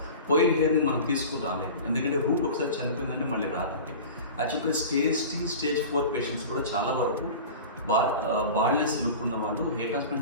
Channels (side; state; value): both; inverted; correlation -0.34